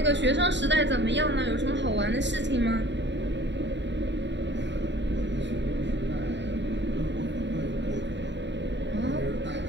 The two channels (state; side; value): late; left; 0.52 ms